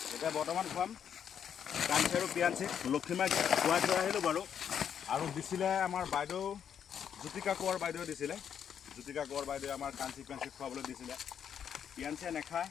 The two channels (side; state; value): right; quieter; 8.4 dB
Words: এতিয়া বৰ্তমান খুৱাম কাঞ্চি আৰু পিয়াঞ্চি। লক্ষীমাক খুৱাই থৈ আহিলোঁ বাৰু। আৰু দিছিলে আমাৰ বাইদেউ জ্যোতিকা কোঁৱৰ বাইদেৱে দিছিলে। জ্যোতিকা কোঁৱৰ বাইদেৱে আমাৰ কাঞ্চি পিয়াঞ্চি খুৱাবলৈ দিছিলে। পিয়াঞ্চিয়ে নাখায়,